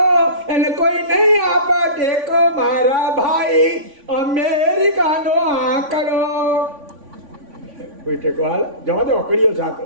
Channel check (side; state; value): left; late; 3.5 ms